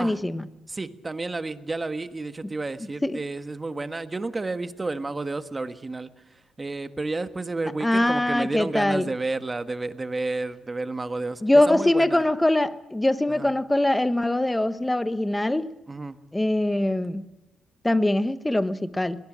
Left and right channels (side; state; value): both; normal; correlation 0.98